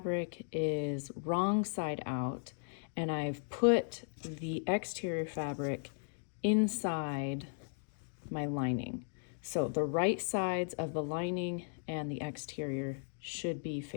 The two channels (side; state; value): right; silent; digital silence